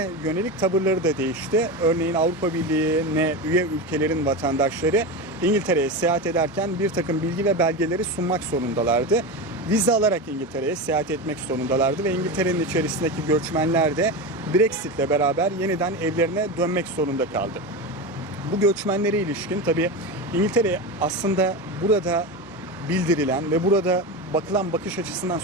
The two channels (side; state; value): both; normal; correlation 0.21